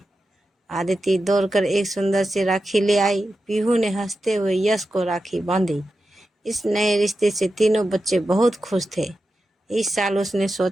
आदिति दौड़कर एक सुंदर सी राखी ले आई। पीहू ने हंसते हुए यश को राखी बांधी। इस नए रिश्ते से तीनों बच्चे बहुत खुश थे। इस साल उसने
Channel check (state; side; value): normal; both; correlation 0.91